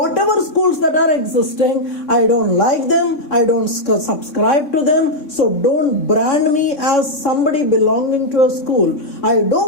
schools that are existing, I don't like them, I don't subscribe to them, so don't brand me as somebody belonging to a school. I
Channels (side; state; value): right; late; 3.5 ms